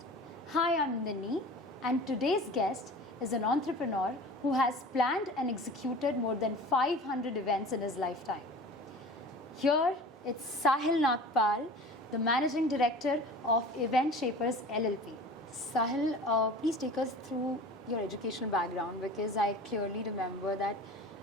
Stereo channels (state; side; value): normal; both; correlation 0.39